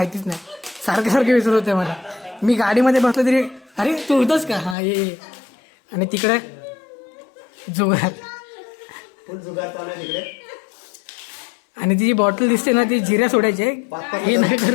नाही. सारखे विसरत होते मला. मी गाडीमध्ये बसलो तरी अरे तू होतच का. हा ये. आणि तिकडे जुगार. आणि ती जी बॉटल दिसते ना ती जिऱ्या सोडायचे. हे नाही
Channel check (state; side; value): drops out; right; at 4.8 s